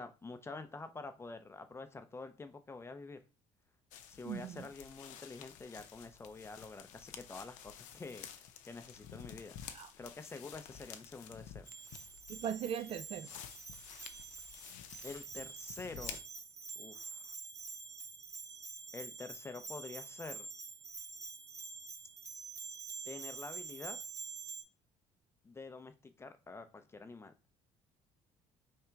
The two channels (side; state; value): both; normal; correlation 0.48